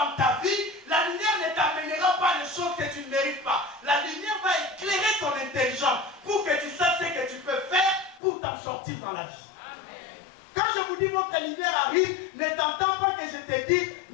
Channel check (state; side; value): drops out; right; at 8.2 s